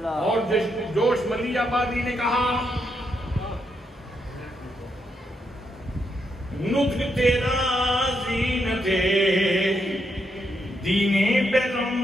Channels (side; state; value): both; normal; correlation 0.79